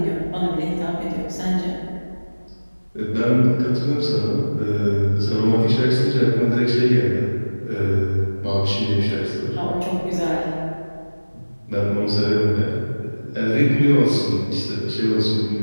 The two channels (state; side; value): inverted; both; correlation -1.00